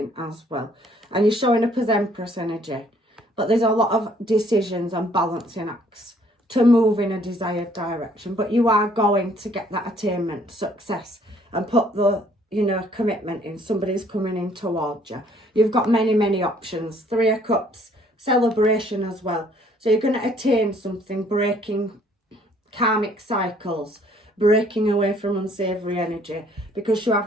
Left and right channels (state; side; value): normal; both; correlation 0.62